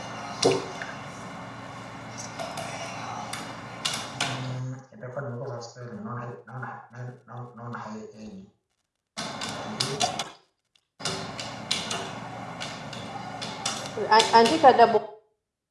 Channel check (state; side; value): identical; both; correlation 1.00